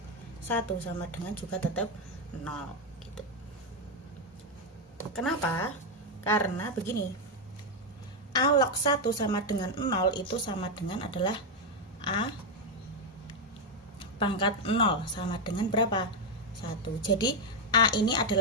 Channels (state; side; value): normal; both; correlation 0.03